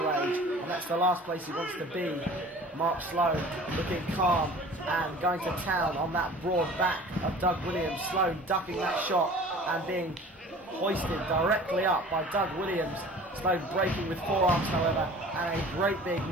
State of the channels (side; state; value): both; normal; correlation 0.44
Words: and that's the last place he wants to be. Mark Sloan looking calm and going to town on that broad back of Doug Williams. Sloan ducking that shot and being hoisted directly up by Doug Williams. Sloan breaking with forearms, however, and a great big